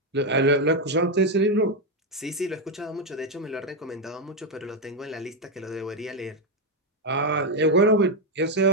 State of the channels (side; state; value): both; normal; correlation 0.04